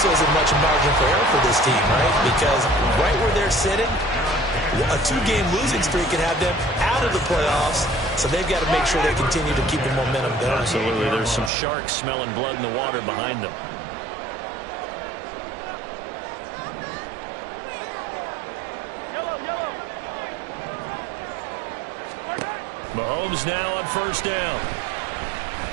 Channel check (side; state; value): left; drops out; at 11.5 s